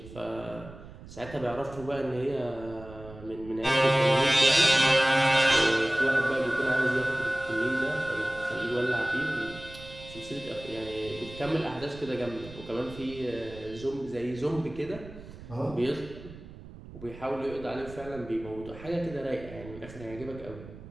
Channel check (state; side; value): noise; right; rumble, 16 dB below the sound